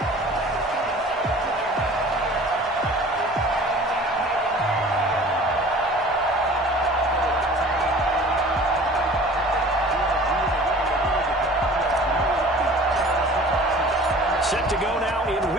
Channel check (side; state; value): both; normal; correlation 0.45